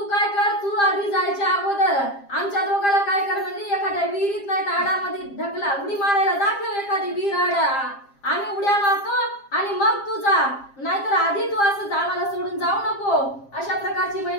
काय कर, तू आधी जायच्या अगोदर आमच्या दोघाला काय कर म्हणली, एखाद्या विहिरीत नाही तर आडामध्ये ढकला, उडी मारायला दाखव एखादी विहीर आडा, आम्ही उड्या मारतो आणि मग तू जा, नाहीतर आधी तू असं आम्हाला सोडून जाऊ नको. अशा प्रकारची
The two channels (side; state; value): right; late; 7.5 ms